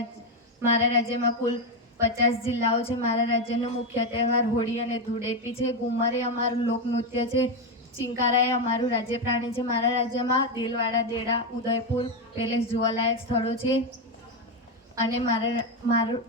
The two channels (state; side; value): normal; both; correlation 0.08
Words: મારા રાજ્યમાં કુલ 50 જિલ્લાઓ છે. મારા રાજ્યનો મુખ્ય તહેવાર હોળી અને ધૂળેટી છે. ઘુમર એ અમારું લોકનૃત્ય છે. ચિંકારા એ અમારું રાજ્ય પ્રાણી છે. મારા રાજ્યમાં દેલવાડા, દેડા, ઉદયપુર પેલેસ જોવાલાયક સ્થળો છે. અને